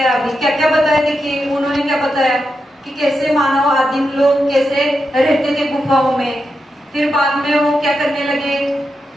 अभी क्या क्या बताया, देखिए उन्होंने क्या बताया कि कैसे मानव आदिम लोग कैसे रहते थे गुफाओं में, फिर बाद में वो क्या करने लगे,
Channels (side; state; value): both; normal; correlation 0.87